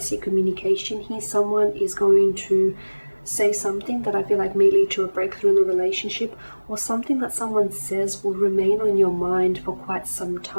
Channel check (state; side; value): inverted; both; correlation -1.00